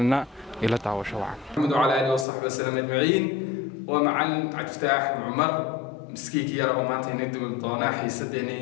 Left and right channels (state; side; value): drops out; right; at 2.2 s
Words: ila daawasho wacan. محمد وعلى آله وصحبه وسلم أجمعين. ومعلم عبد الفتاح عمر مسكيك يا رب maanta inay duuban doonaa